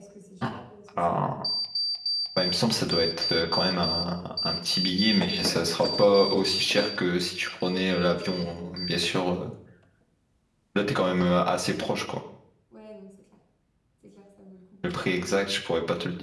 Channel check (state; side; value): identical; both; correlation 1.00